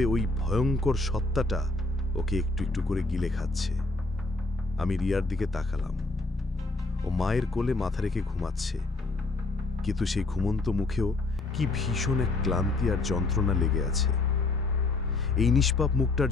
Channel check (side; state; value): right; quieter; 3.3 dB